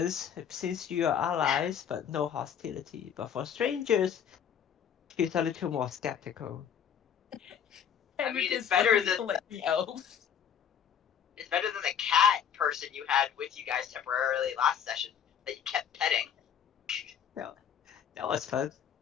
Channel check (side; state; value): right; quieter; 8.3 dB